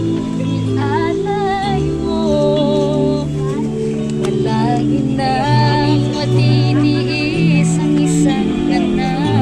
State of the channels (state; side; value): identical; both; correlation 1.00